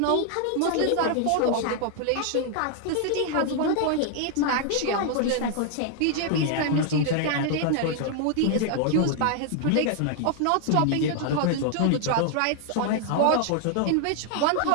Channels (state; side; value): different; both; correlation 0.00